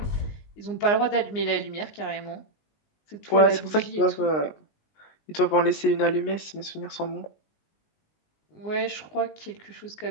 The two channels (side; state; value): right; late; 19 ms